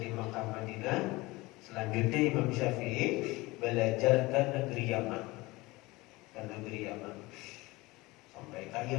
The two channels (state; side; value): quieter; right; 21.7 dB